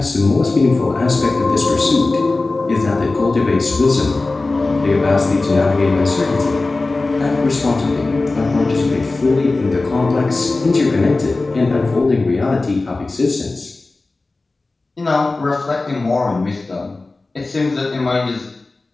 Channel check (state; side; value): quieter; right; 3.4 dB